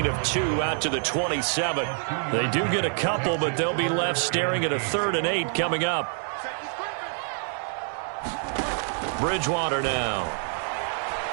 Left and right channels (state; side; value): silent; left; 61 dB below the other